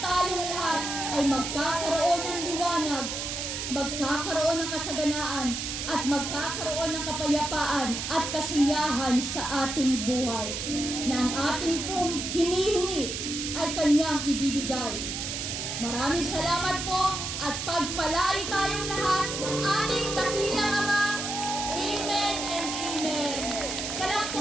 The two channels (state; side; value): noise; right; hiss, 4 dB below the sound